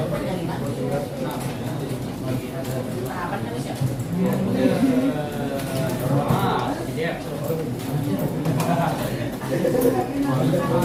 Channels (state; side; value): identical; both; correlation 1.00